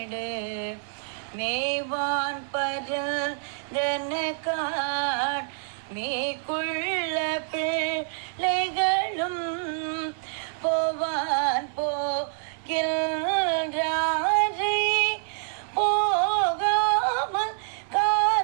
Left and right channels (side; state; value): left; silent; 60 dB below the other